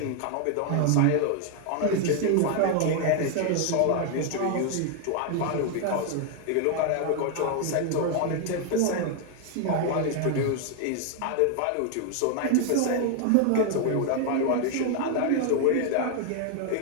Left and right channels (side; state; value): both; different; correlation 0.00